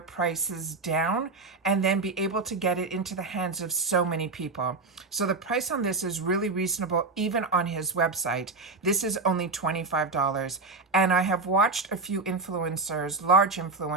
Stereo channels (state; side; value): quieter; left; 3.8 dB